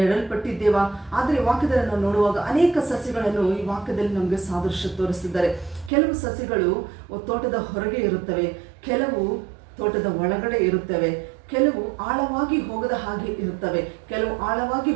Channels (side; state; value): left; drops out; at 5.9 s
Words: ಆದರೆ ವಾಕ್ಯದಲ್ಲಿ ನಾವು ನೋಡುವಾಗ ಅನೇಕ ಸಸಿಗಳನ್ನು ಈ ವಾಕ್ಯದಲ್ಲಿ ನಮಗೆ ಸಾದೃಶ್ಯ ತೋರಿಸ್ತಿದ್ದಾರೆ. ಕೆಲವು ಸಸಿಗಳು ತೋಟದ ಹೊರಗೆ ಇರುತ್ತವೆ, ಕೆಲವು ತೋಟದ ಒಳಗಡೆ ಇರುತ್ತವೆ, ಕೆಲವು ಆಳವಾಗಿ ಹೋಗದ ಹಾಗೆ ಇರುತ್ತವೆ, ಕೆಲವು ಆಳವಾಗಿ